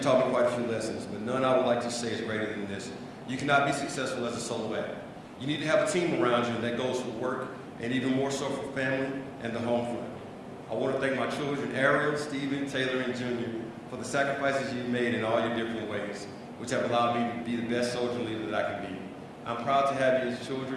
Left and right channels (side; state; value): both; identical; correlation 1.00